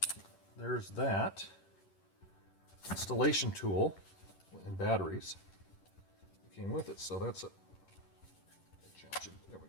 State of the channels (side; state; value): right; late; 11 ms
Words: there's that installation tool and batteries that came with it. So that's a there we